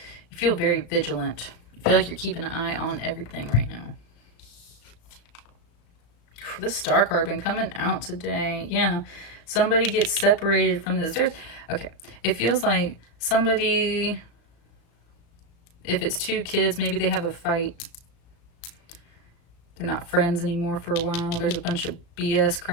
you feel very vigilant. You feel like you're keeping an eye on everything right now. This Star card been coming out today. Yeah. Somebody gets separated from this. Okay. It feels like somebody... If it's two kids, maybe they have a fight. They're not friends anymore for a while. There's a bunch of BS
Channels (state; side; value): late; right; 35 ms